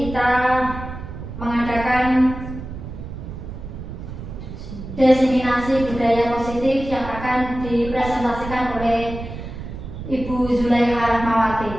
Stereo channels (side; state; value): right; noise; rumble, 10 dB below the sound